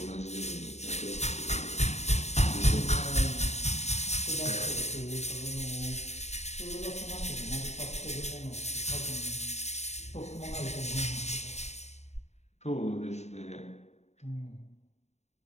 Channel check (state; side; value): late; right; 0.32 ms